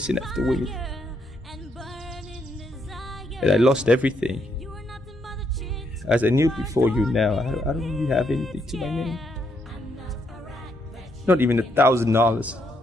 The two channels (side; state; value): both; normal; correlation 0.76